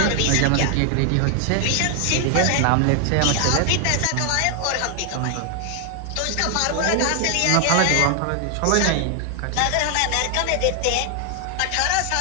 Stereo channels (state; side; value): different; both; correlation 0.00